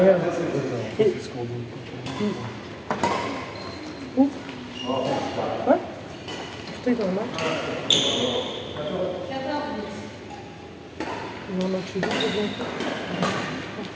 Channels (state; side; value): identical; both; correlation 1.00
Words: Et... Où? Ouais? Putain, dans le match. Non, non, je suis bien.